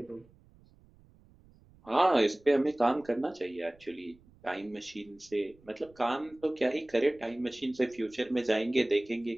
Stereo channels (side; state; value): right; noise; rumble, 28 dB below the sound